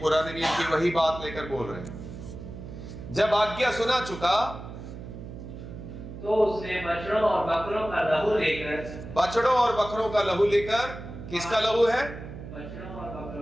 पुराने नियम की वही बात लेकर बोल रहे हैं। जब आज्ञा सुना चुका तो उसने बछड़ों और बकरों का लहू लेकर, बछड़ों और बकरों का लहू लेकर, किसका लहू है? बछड़ों और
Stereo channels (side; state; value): right; noise; hum, 11 dB below the sound